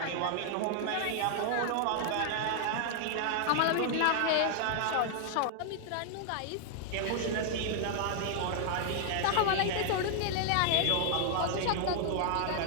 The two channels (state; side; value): different; both; correlation -0.01